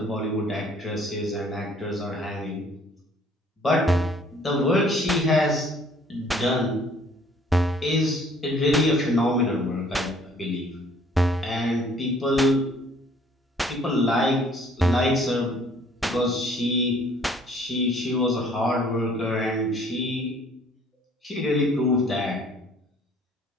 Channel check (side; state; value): both; normal; correlation 0.58